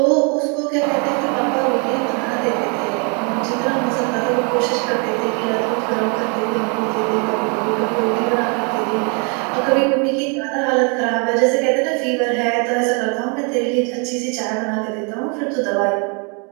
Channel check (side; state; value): left; quieter; 35.9 dB